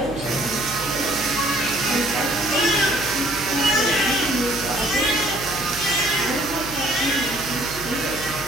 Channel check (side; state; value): right; noise; hum, 14 dB below the sound